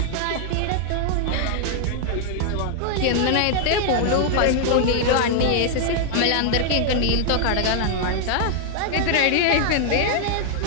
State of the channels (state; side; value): different; both; correlation 0.00